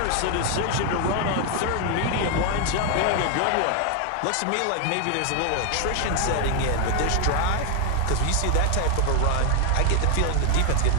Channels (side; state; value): both; different; correlation 0.01